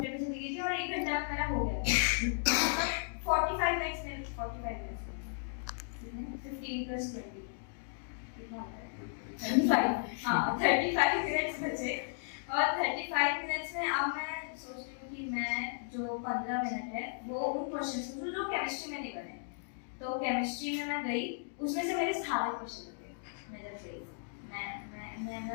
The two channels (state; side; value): silent; right; digital silence